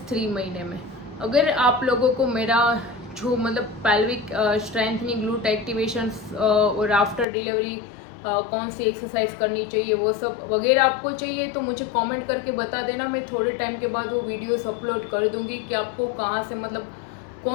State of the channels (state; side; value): drops out; right; at 7.2 s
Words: 3 महीने में। अगर आप लोगों को मेरा जो मतलब पेल्विक स्ट्रेंथनिंग, ग्लूट एक्टिवेशन और आफ्टर डिलीवरी कौन सी एक्सरसाइज करनी चाहिए वो सब वगैरह आपको चाहिए तो मुझे कमेंट करके बता देना। मैं थोड़े टाइम के बाद वो वीडियोस अपलोड कर दूंगी कि आपको कहाँ से, मतलब